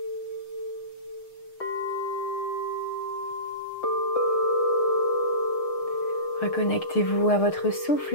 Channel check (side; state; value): right; late; 6.5 ms